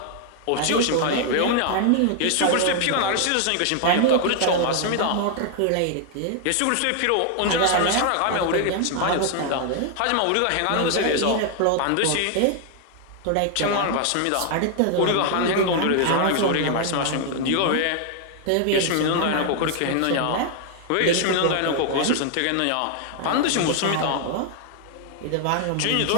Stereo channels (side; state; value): both; different; correlation 0.00